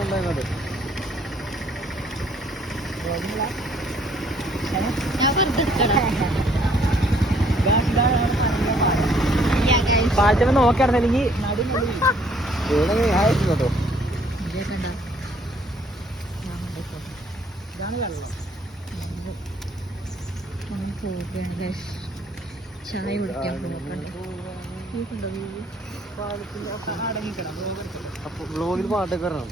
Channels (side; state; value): both; normal; correlation 0.63